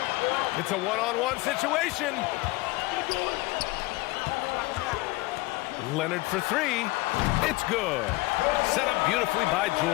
It's a one-on-one situation. Leonard for 3. It's good. Set up beautifully by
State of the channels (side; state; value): right; quieter; 21.5 dB